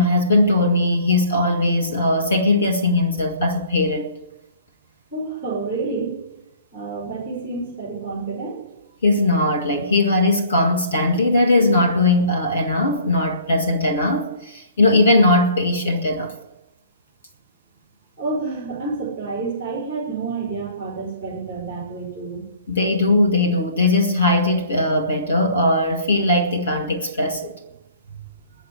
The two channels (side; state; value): both; inverted; correlation -0.51